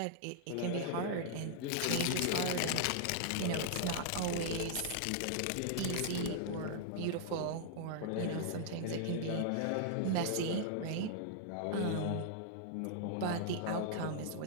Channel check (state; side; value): different; both; correlation -0.01